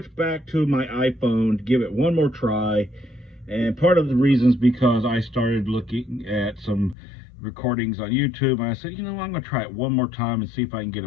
back to my iPhone to give it one more try. And part of the reason is because I started looking at some recordings on YouTube. And I said, I'm going to try it one more time and see if I can get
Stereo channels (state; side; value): drops out; right; at 7.0 s